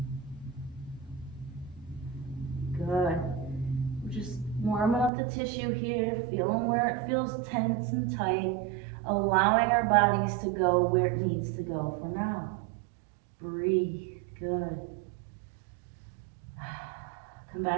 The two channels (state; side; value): drops out; left; at 5.1 s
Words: Good. We're just warming up the tissue here, feeling where it feels tense and tight, allowing our bodies to go where it needs to go for now. Breathe. Good. Come